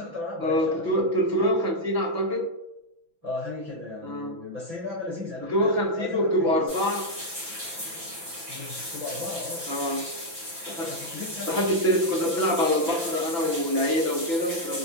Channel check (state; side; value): late; left; 6.0 ms